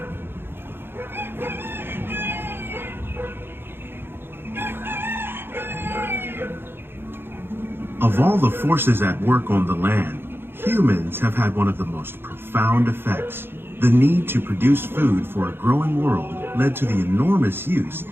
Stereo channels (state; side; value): late; left; 0.10 ms